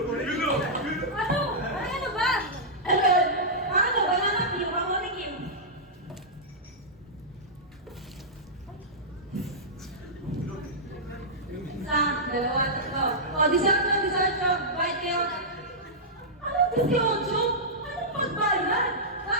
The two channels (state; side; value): normal; both; correlation -0.12